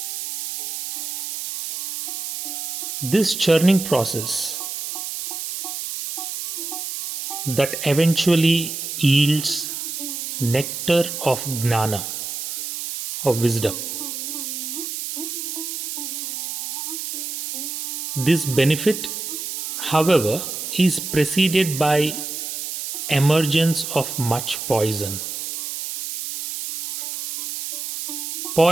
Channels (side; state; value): right; noise; hiss, 5 dB below the sound